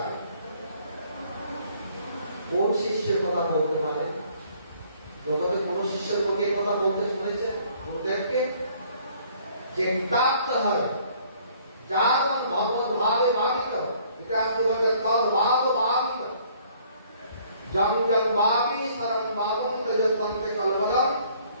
কোন শিষ্যের কথা বলতে পারে? জগতে কোন শিষ্যের পক্ষে কথা বলতে শুনেছে? গুরুদেবকে যে প্রাপ্ত হয়, যার ভগবত ভাবে ভাবিত, ইতিহাস বলে তদ ভাব ভাবিত, জং জং ভাবি শরণ ভাবম তেজতন্তে কলবদম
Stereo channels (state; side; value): inverted; both; correlation -0.60